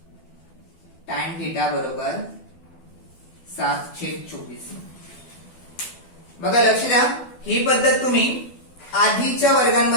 Tan theta बरोबर 7/24. बघा लक्ष द्या, ही पद्धत तुम्ही आधीच्या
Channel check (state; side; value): late; right; 12 ms